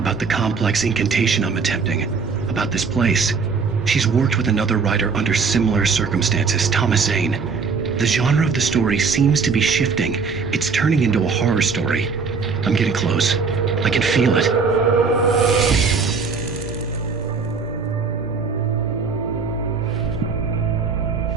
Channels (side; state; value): left; quieter; 5.1 dB